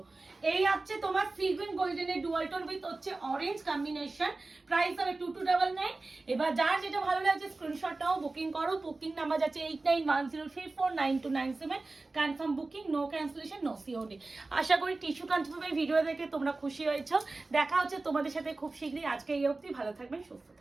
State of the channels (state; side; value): quieter; left; 3.4 dB